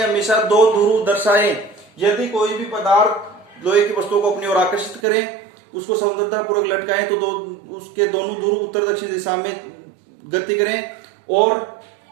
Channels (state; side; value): drops out; left; at 5.0 s